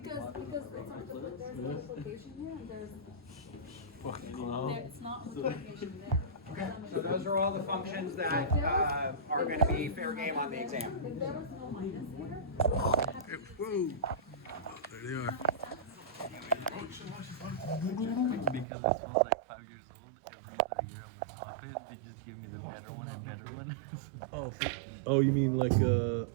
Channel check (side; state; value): left; drops out; at 18.7 s